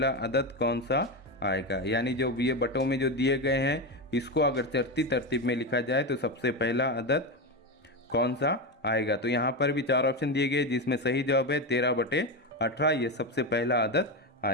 अदद कौन सा आएगा। यानी जो ये बटों में जो दिए गए हैं इसको अगर चढ़ती तरतीब में लिखा जाए तो सबसे पहला अदद कौन सा आएगा। तो यहाँ पर भी 4 ऑप्शन दिए गए जिसमें सही जवाब है 13/18, ये सबसे पहला अदद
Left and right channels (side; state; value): both; normal; correlation 0.14